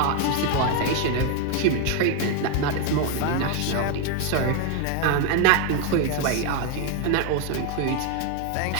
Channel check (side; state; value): both; different; correlation 0.01